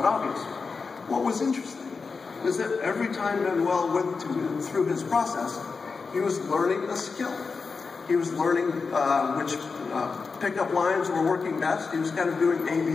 obvious. What was interesting is that every time Manuel went through his process, he was learning a skill. He was learning which pickup lines were working best. He was kind of doing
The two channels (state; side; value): quieter; right; 4.8 dB